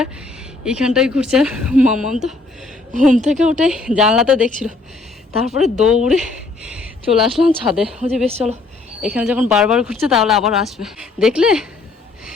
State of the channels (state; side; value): quieter; right; 3.5 dB